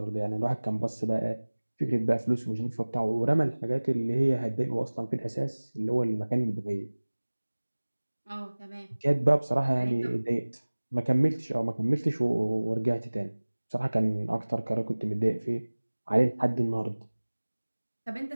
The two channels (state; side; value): inverted; both; correlation -1.00